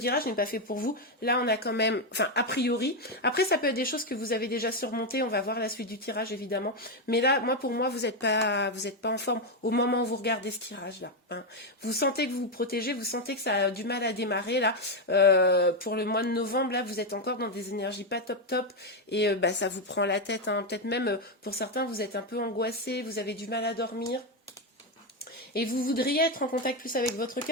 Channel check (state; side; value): normal; both; correlation 0.06